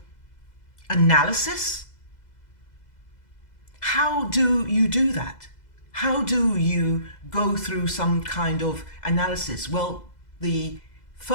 analysis? How do you do that? How do you go through some kind of analysis? Well, the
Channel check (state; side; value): late; right; 2.0 ms